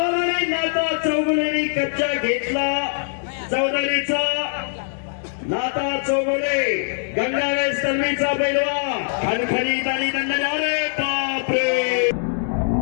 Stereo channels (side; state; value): right; silent; digital silence